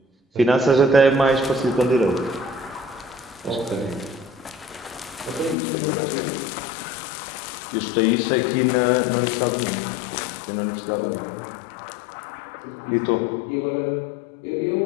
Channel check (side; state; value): right; drops out; at 5.6 s